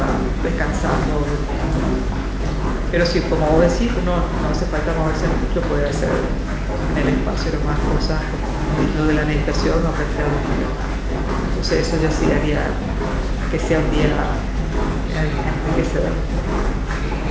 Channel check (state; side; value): identical; both; correlation 1.00